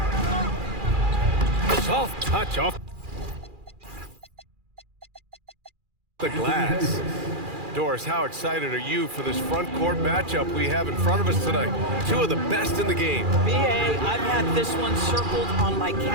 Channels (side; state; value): left; late; 2.4 ms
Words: Soft touch off the glass. Doris, how excited are you for this front court matchup we have in front of us tonight? Two of the best in the game. B.A., I've had this one circled on my